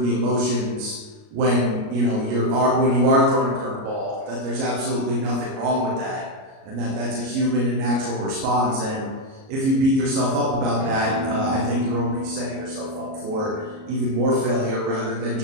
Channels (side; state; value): left; late; 37 ms